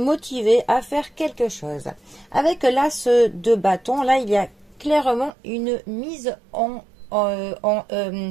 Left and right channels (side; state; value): left; drops out; at 5.3 s